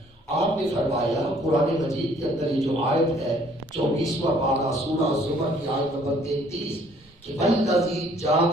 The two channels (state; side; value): normal; both; correlation 0.60